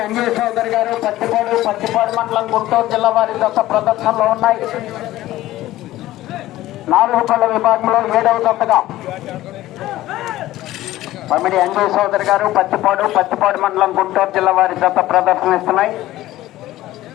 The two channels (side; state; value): right; quieter; 15.6 dB